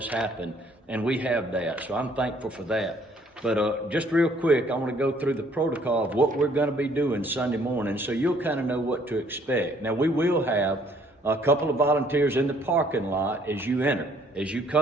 happen, and we have that, so I'm thankful for that. But just real quick, I want to go through the protocol of what we're going to be doing Sunday morning, so you'll kind of know what to expect. Now, we will have a couple of volunteers in the parking lot as you enter. As you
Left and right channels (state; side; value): normal; both; correlation 0.62